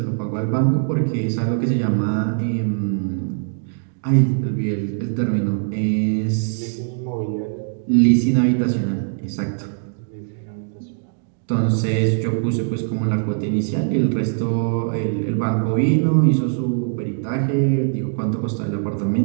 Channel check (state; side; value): silent; left; digital silence